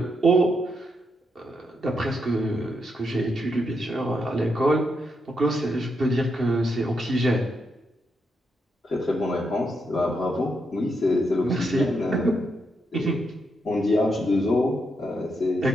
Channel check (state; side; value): normal; both; correlation 0.81